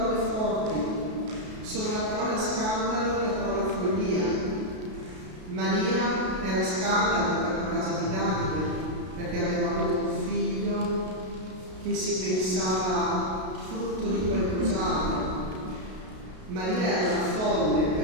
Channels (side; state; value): left; late; 32 ms